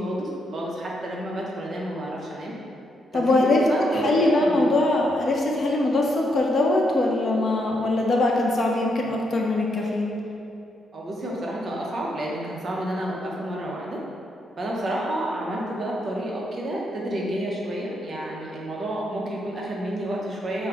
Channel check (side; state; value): both; normal; correlation 0.78